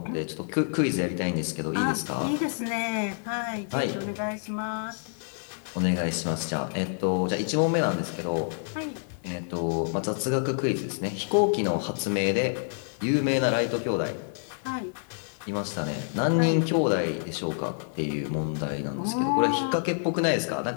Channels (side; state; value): right; silent; digital silence